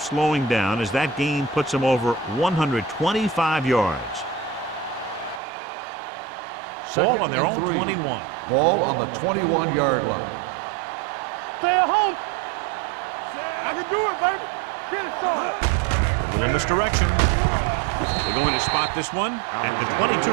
slowing down as that gain puts him over 125 yards. Ball on their own 21. Ball on the 21-yard line. Stay at home. I can do it, baby. Get it, son. A little misdirection. They're going to spot this one at the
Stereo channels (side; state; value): left; drops out; at 5.4 s